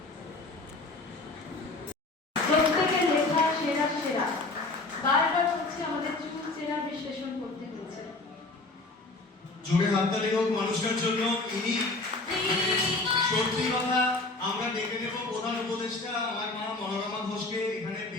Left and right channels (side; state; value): right; quieter; 3.2 dB